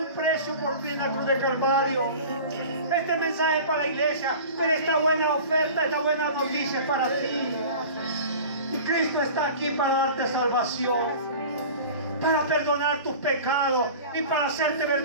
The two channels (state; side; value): inverted; both; correlation -0.38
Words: precio por ti en la cruz de Calvario. Este mensaje es para la iglesia, pero esta buena oferta, esta buena noticia es para ti. Y Cristo está aquí para darte salvación, para perdonar tus pecados y para hacerte